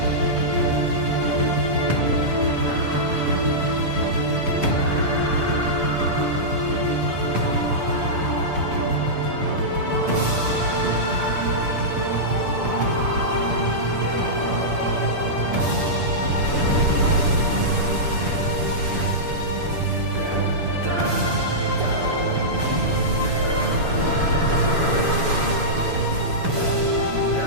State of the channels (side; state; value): left; late; 6.9 ms